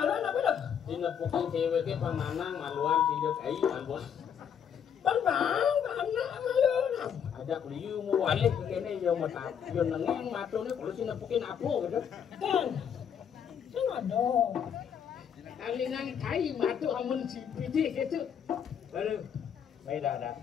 apa dah dina puking cewek ke pananang maluan tidak cai maluan bang anak maluan ajak liu mu walik kene yo mata yo nengeng matone kalau sina pukin apo gitu kan ada kalingan kai matu amun si pidi gitu baru baik dah ada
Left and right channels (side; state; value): right; quieter; 8.1 dB